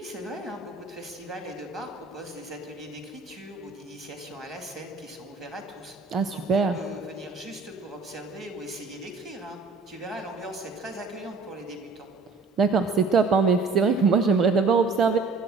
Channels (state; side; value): quieter; left; 4.2 dB